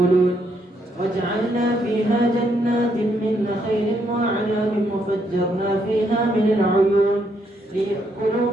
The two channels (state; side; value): normal; both; correlation 0.74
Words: وجعلنا فيها جنات من نخيل وأعناب وفجرنا فيها من العيون ليأكلوا